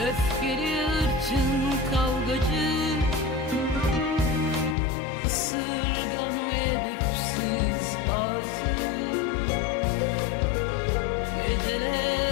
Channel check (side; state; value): right; drops out; at 4.8 s